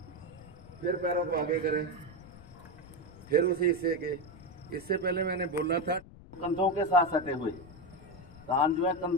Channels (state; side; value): noise; left; rumble, 19 dB below the sound